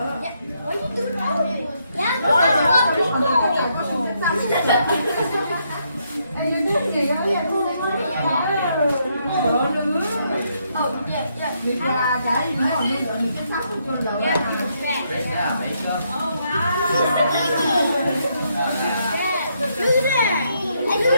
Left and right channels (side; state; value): both; inverted; correlation -0.76